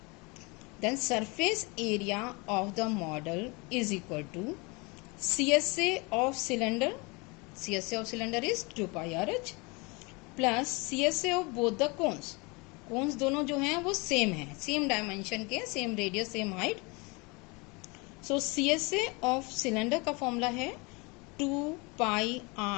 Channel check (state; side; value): quieter; right; 27.9 dB